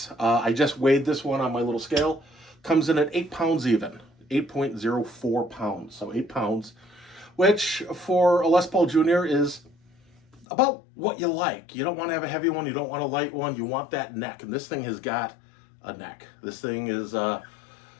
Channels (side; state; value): right; drops out; at 10.5 s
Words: I just weighed this one on my little scale. Comes in at 8 pounds even, 8.04 pounds. So 8 pounds, which for a Les Paul Jr. is about what you like. You don't want to have a heavy one. You don't want a light one. You want that neck. And this thing has got a neck. This thing is a